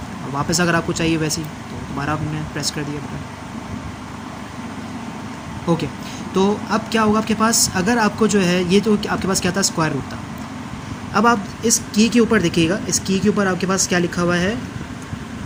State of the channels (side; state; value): both; identical; correlation 1.00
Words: और वापस अगर आपको चाहिए वैसे ही, तो दोबारा आपने प्रेस कर दिया बटन। ओके, तो अब क्या होगा आपके पास, अगर आपको जो है ये तो आपके पास क्या था, स्क्वायर रूट था। अब आप इस की के ऊपर देखिएगा, इस की के ऊपर आपके पास क्या लिखा हुआ है,